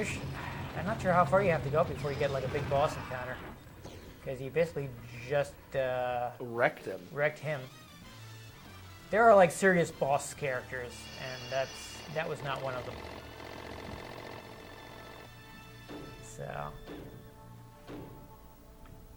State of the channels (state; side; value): identical; both; correlation 1.00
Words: I'm not sure how far you have to go before you get like a big boss encounter, because you basically just wrecked him. There are like serious boss characters, and that was not one of them. So